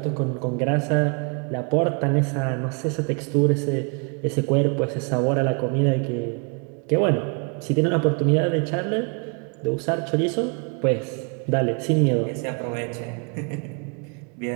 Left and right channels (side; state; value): left; quieter; 36.0 dB